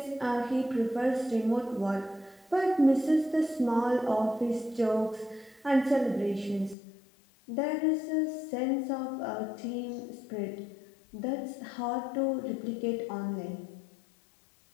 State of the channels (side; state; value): right; drops out; at 6.8 s